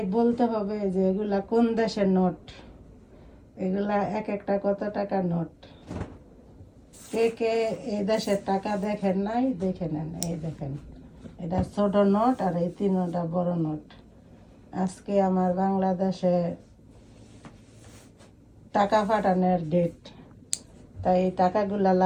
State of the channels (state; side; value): identical; both; correlation 1.00